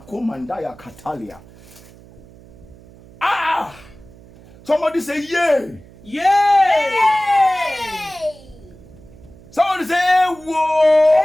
Somebody say, yay. Yay. Somebody say, whoa.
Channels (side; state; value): right; noise; hum, 23 dB below the sound